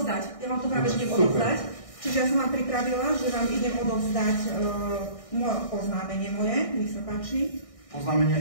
Ja vám to práve idem odovzdať. Čiže ja som vám pripravila, že vám idem odovzdať oznámenie moje. Nech sa páči.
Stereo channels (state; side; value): late; right; 1.6 ms